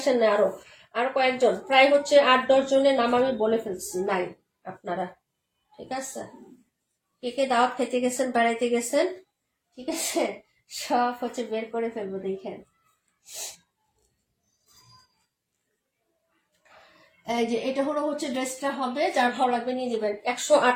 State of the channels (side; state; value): both; identical; correlation 1.00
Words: না, আরো আরো কয়েকজন, প্রায় হচ্ছে 8-10 জনের নাম আমি বলে ফেলছি নাই আপনারা। ঠিক আছে, কে কে দাওয়াত খেতে গেছেন, বেড়াইতে গেছেন, ঠিক আছে, সব হচ্ছে বের করে ফেলবো, দেখেন। এই যে এটা হলো হচ্ছে ড্রেসটা হবে, যার ভালো লাগবে নিয়ে নেবেন।